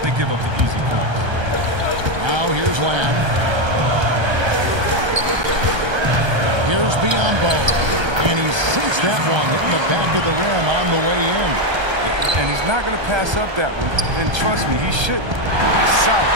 They give up the easy points. now. Here's Lamb. Here's Biombo. And he sinks that one, hitting the back of the rim on the way in. And he's not going to pass up that one. And trust me, he shouldn't. South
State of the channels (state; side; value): late; left; 1.3 ms